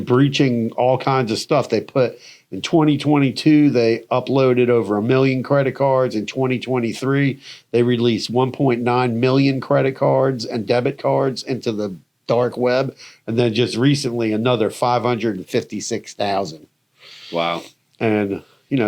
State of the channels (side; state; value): both; identical; correlation 1.00